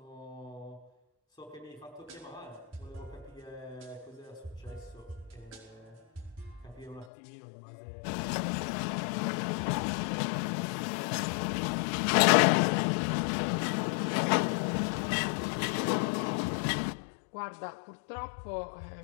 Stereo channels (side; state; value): right; drops out; at 7.1 s